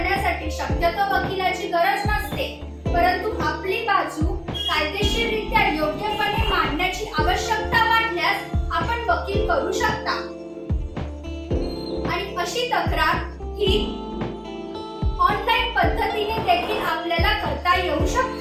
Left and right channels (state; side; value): identical; both; correlation 1.00